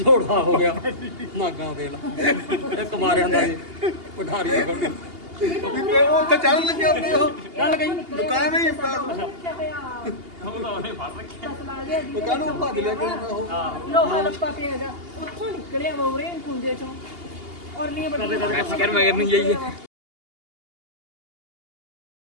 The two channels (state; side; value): late; left; 2.8 ms